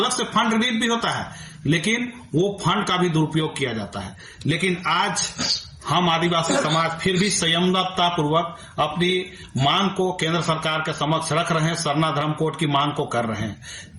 से फंड रिलीज भी होता है, लेकिन वो फंड का भी दुरुपयोग किया जाता है। लेकिन आज हम आदिवासी समाज फिर भी संयमता पूर्वक अपनी मांग को केंद्र सरकार के समक्ष रख रहे हैं, सरना धर्म कोड की मांग को कर रहे हैं,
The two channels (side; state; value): both; identical; correlation 1.00